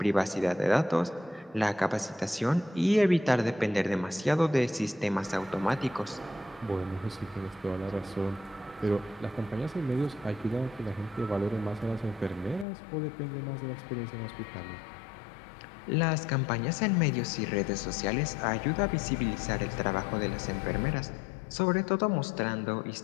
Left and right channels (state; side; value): drops out; right; at 12.7 s